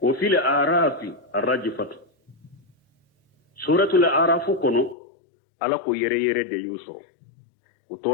وفي الأعراف الرجفة سورة الأعراف كنو ألا كو يري دي يوسو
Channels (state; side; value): drops out; right; at 5.0 s